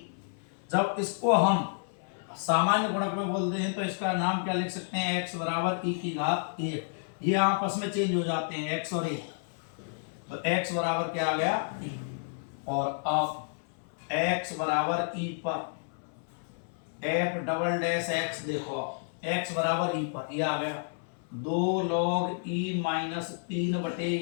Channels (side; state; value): right; silent; 56 dB below the other